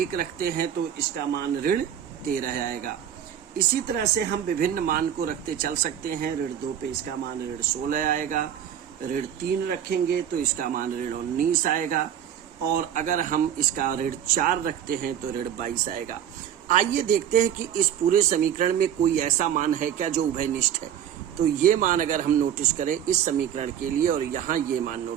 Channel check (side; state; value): left; quieter; 9.7 dB